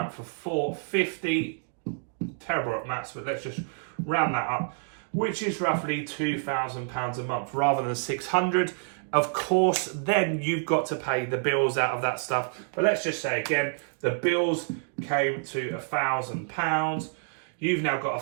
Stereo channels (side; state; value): left; silent; 59 dB below the other